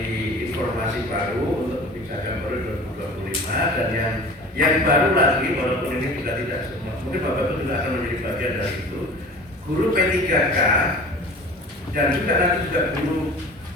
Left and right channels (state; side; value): normal; both; correlation 0.40